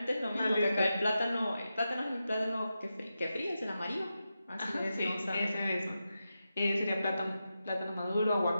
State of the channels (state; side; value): inverted; both; correlation -0.90